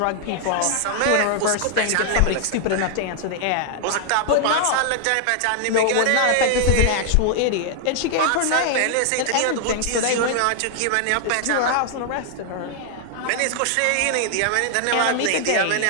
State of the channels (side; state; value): both; different; correlation 0.00